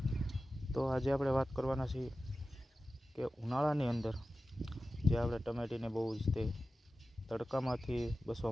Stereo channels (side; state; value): both; normal; correlation 0.94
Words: તો આજે આપણે વાત કરવાના છીએ કે ઉનાળાની અંદર જે આપણે ટમેટીને બહુ જ તે તડકામાંથી